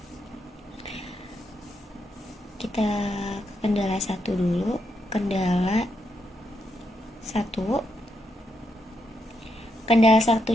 Kita ke kendala 1 dulu. Kendala 1. Kendala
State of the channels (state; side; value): normal; both; correlation 0.81